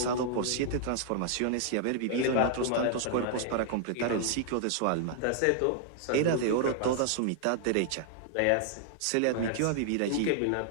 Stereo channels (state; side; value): different; both; correlation 0.00